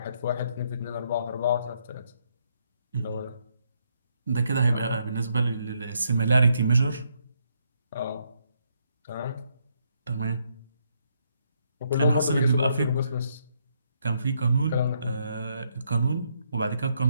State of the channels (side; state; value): both; inverted; correlation -0.75